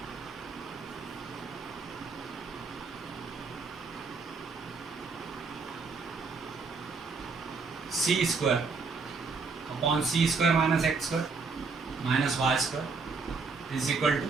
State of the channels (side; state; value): left; quieter; 4.6 dB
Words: C square upon c square minus x square minus y square is equal to